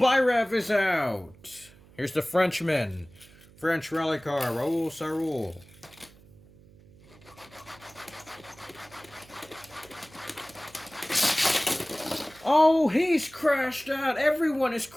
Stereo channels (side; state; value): right; noise; hum, 25 dB below the sound